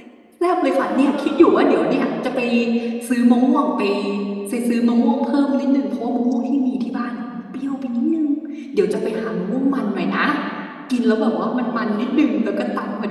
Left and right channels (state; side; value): identical; both; correlation 1.00